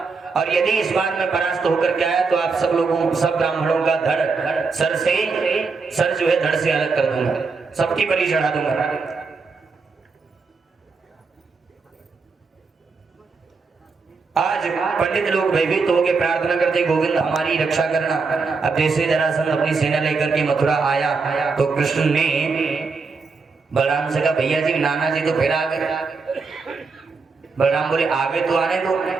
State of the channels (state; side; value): quieter; left; 4.6 dB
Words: और यदि इस बार में परास्त होकर के आया तो आप सब ब्राह्मणों का धड़ सर जो है धड़ से अलग कर दूंगा, सबकी बलि चढ़ा दूंगा। आज पंडित लोग भयभीत हो गए, प्रार्थना करते गोविंद हमारी रक्षा करना। अब जैसे जरासंध अपनी सेना लेकर के मथुरा आया तो कृष्ण ने बलराम से कहा भैया जी नाना जी तो फिर आ गए। बलराम बोले आगे तो आने दो।